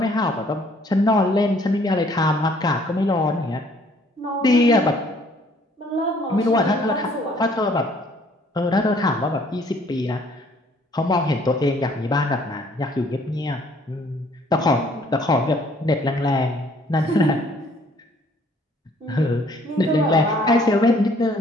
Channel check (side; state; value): both; normal; correlation 0.60